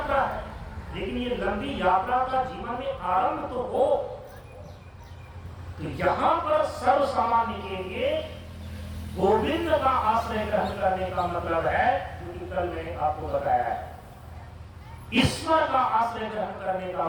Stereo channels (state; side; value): identical; both; correlation 1.00